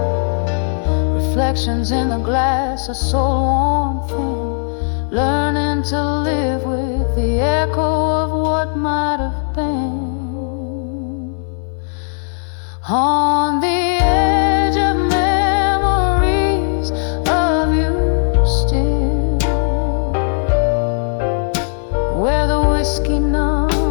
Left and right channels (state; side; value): silent; right; digital silence